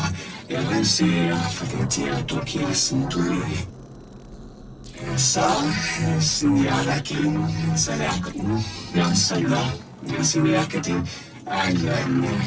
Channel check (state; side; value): identical; both; correlation 1.00